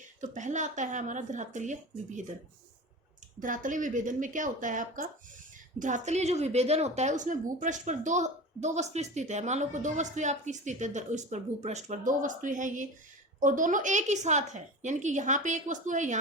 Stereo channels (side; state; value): both; normal; correlation 0.31